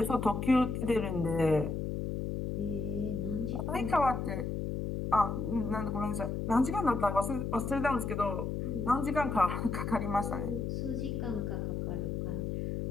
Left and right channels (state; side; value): noise; left; hum, 2 dB below the sound